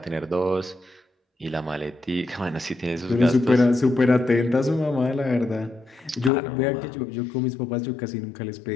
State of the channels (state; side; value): drops out; right; at 6.3 s